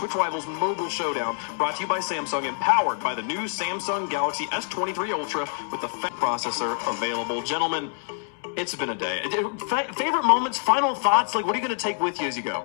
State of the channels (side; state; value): right; silent; 61 dB below the other